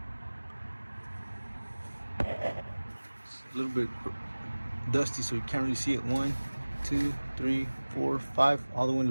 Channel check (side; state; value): both; inverted; correlation -1.00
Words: It's a little bit dusty, so you can't really see it. 1, 2, 3, 4, 5, all the way in